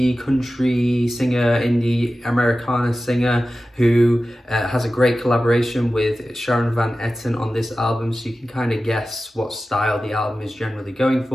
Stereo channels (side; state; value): both; normal; correlation 0.95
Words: country singer, indie Americana singer, who has a great collaboration with Sharon Van Etten on this album, so you can kind of guess what style the album is generally going